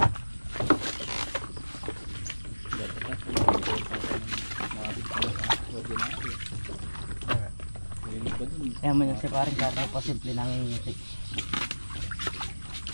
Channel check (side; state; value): both; inverted; correlation -1.00